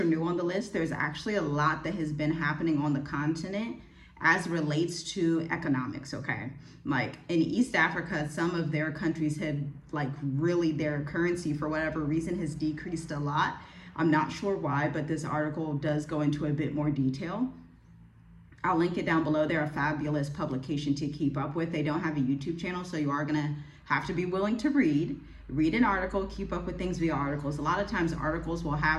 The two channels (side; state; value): both; identical; correlation 1.00